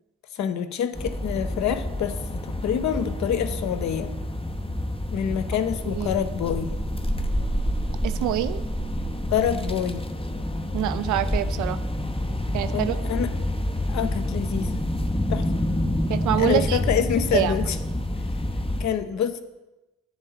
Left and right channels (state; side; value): normal; both; correlation 0.51